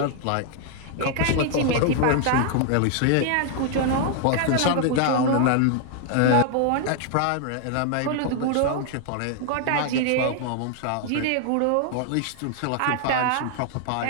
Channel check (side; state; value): both; different; correlation 0.00